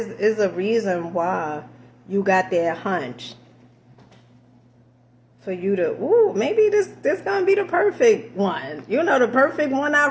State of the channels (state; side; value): identical; both; correlation 1.00